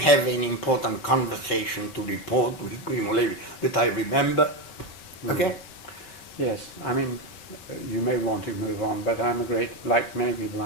any important conversation to report with Primo Levi that I remember. Okay? Yes, I mean, you may want to move on, but I'm like many people,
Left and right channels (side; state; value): right; late; 5.2 ms